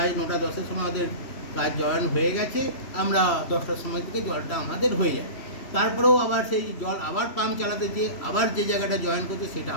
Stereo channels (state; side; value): late; right; 3.1 ms